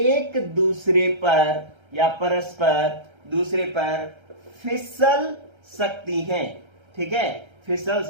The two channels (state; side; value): late; left; 1.3 ms